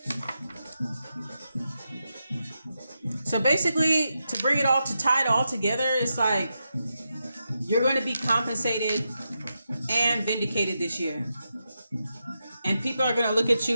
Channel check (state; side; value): inverted; both; correlation -0.87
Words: So basically, to bring it all, to tie it all together, it's like you're going to be compensated and vindicated this year. And people are going to look at